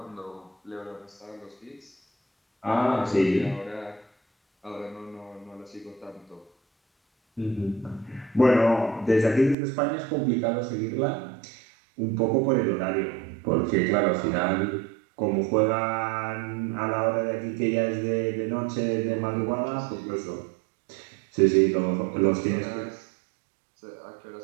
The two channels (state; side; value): drops out; left; at 9.6 s